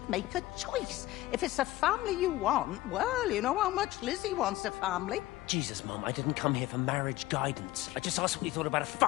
make a choice. If it's a family you want, well, you know how much Lizzie wants a family. Jesus, Mum, I didn't come here for marriage guidance. I just asked what you thought about a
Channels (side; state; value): right; quieter; 16.9 dB